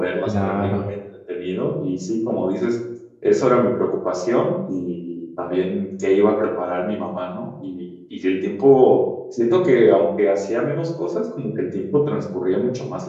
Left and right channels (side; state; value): both; identical; correlation 1.00